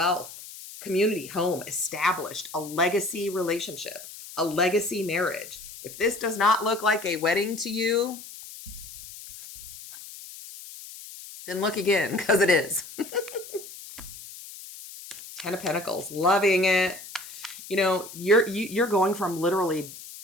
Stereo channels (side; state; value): left; noise; hiss, 14 dB below the sound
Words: community, home, established, a legacy relationship, a legacy marriage. If this does not look like a wedding to you, then look again, because it is. Ten of Pentacles, loving it. You know, you're going from literally